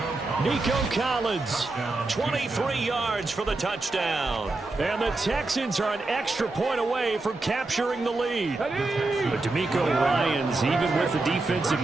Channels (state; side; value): quieter; left; 3.2 dB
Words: Nico Collins, 23 yards for the touchdown. And the Texans are an extra point away from capturing the lead. But DeMeco Ryans, even with the defensive